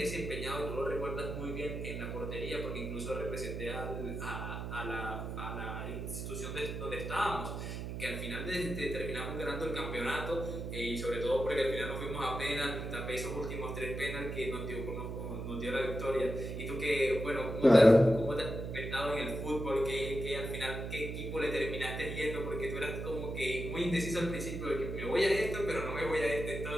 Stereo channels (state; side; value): noise; right; hum, 5 dB below the sound